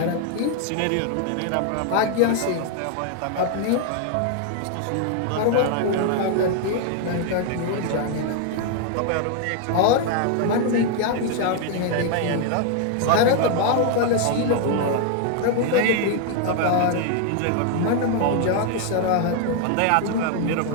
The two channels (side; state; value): both; different; correlation 0.00